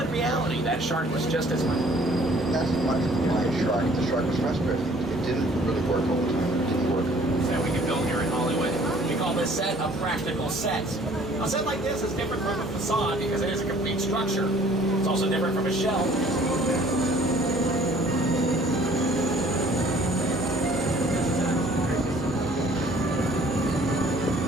reality, that shark was just as much. That's why the shark was frustrated. It didn't really work all the time. It didn't work. So we can build here in Hollywood. We call this set a practical set. A set like this is different from a facade because it is a complete structure. It's also different from a shell.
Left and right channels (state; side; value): normal; both; correlation 0.56